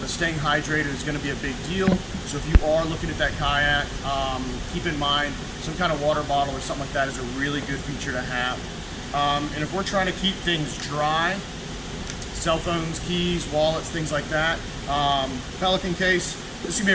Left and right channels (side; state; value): both; identical; correlation 1.00